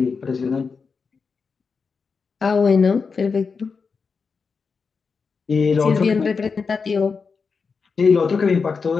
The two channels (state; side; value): quieter; right; 5.1 dB